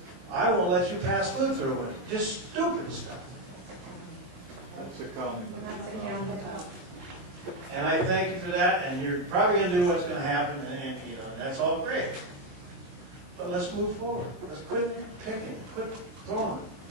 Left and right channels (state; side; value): late; left; 23 ms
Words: I won't let you pass food through it. Just stupid stuff. That's a comment. And I thank you for that, and you're probably going to do what's going to happen, and you know, and that's all great. But let's move forward. Let's quit picking, quit throwing.